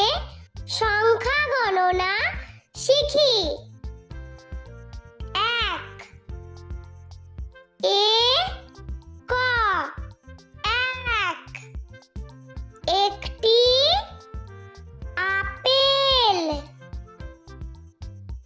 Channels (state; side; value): identical; both; correlation 1.00